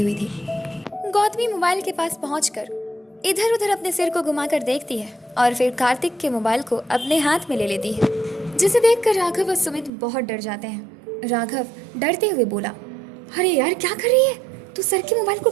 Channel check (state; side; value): drops out; left; at 9.9 s